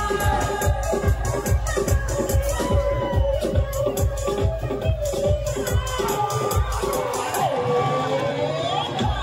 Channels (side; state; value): both; identical; correlation 1.00